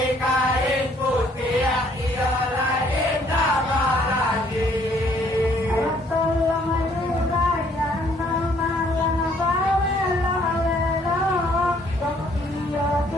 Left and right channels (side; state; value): both; normal; correlation 0.64